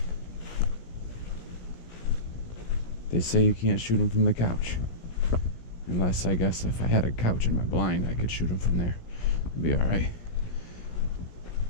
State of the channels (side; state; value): right; late; 17 ms